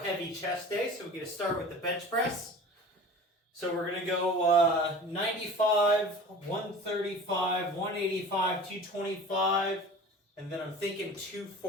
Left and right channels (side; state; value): both; normal; correlation 0.39